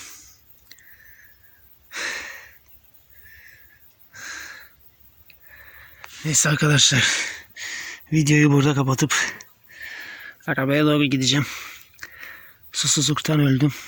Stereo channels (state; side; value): identical; both; correlation 1.00